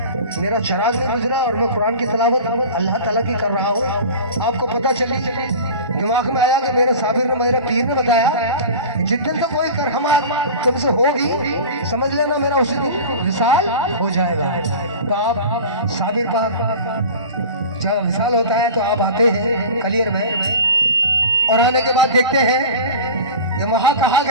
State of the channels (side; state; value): both; inverted; correlation -0.35